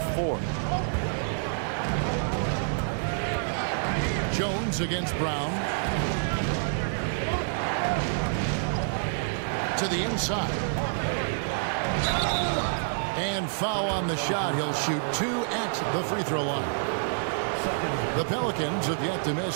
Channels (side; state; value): left; silent; 58 dB below the other